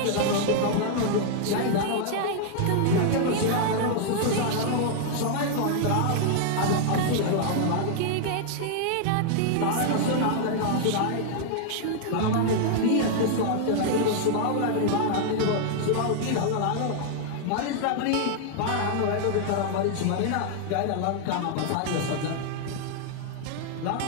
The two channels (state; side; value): different; both; correlation 0.00